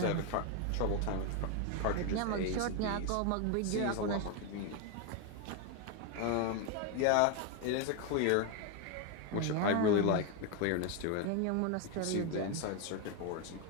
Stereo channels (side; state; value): both; different; correlation 0.01